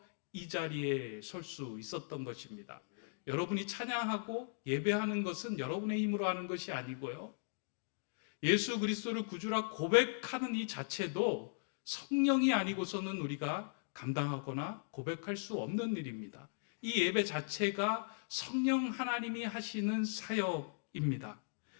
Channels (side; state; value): right; silent; digital silence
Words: 이 자리에 설 수 있었던 것입니다. 여러분이 찬양하고 예배하는 것은 여러분의 힘으로 하는 것이 아니고요. 예수 그리스도를 구주라 고백하는 이 자체도 성령이 아니고서는 우리가 감당하거나 고백할 수 없는 일입니다. 이 예배 자체가 성령 하나님이 하시는 사역입니다.